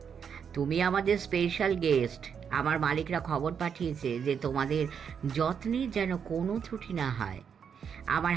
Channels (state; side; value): quieter; left; 7.2 dB